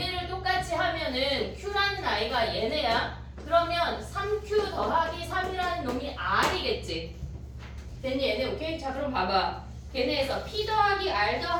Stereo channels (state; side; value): identical; both; correlation 1.00